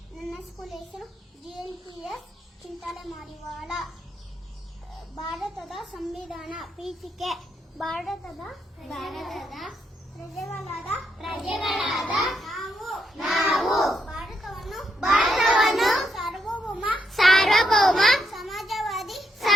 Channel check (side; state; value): both; normal; correlation 0.79